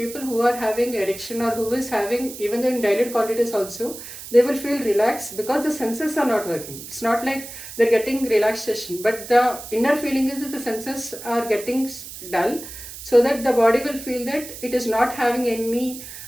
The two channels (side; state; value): right; noise; hiss, 12 dB below the sound